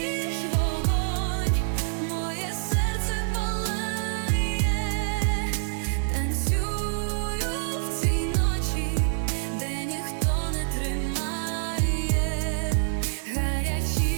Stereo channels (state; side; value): silent; left; digital silence